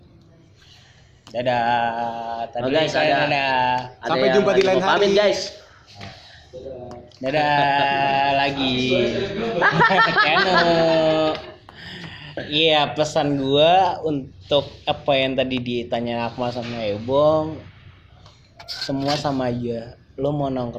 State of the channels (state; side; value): identical; both; correlation 1.00